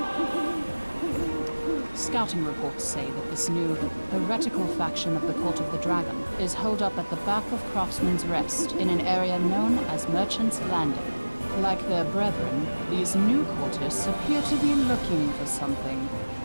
Scouting reports say that this new, heretical faction of the Court of the Dragon is holed up at the back of Craftsman's Rest in an area known as Merchant's Landing. Like their brethren, these new courtists appear to be looking for something.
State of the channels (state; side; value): inverted; both; correlation -1.00